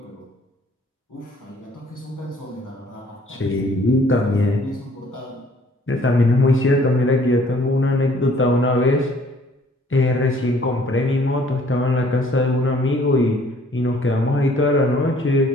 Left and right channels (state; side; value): normal; both; correlation 0.58